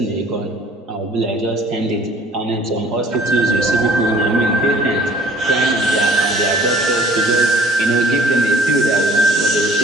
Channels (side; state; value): both; normal; correlation 0.53